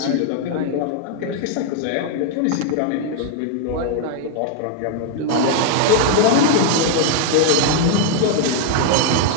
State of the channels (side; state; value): both; different; correlation 0.00